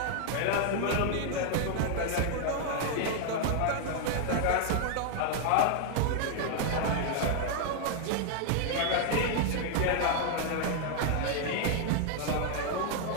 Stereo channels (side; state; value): both; different; correlation 0.00